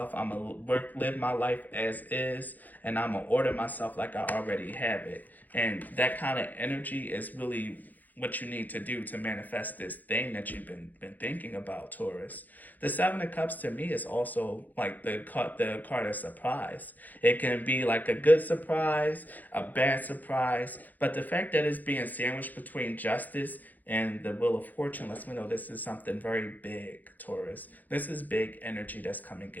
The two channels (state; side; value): late; right; 0.083 ms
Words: I'm gonna live my life as is, and I'm gonna order myself like I already have it. And that kind of energy is really what you need to do to manifest this thing that you've been thinking about, Taurus. The Seven of Cups to me is also like the card of surprise. It can be like a good surprise, a bad surprise, but the fact that it's being sandwiched between Justice and the Wheel of Fortune lets me know this is something very big, Taurus. This is big energy that's coming